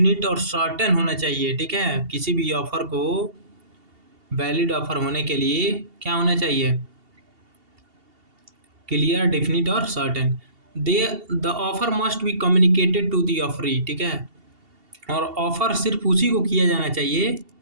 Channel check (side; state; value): left; late; 2.8 ms